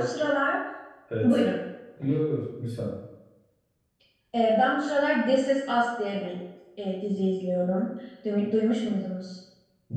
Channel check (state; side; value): identical; both; correlation 1.00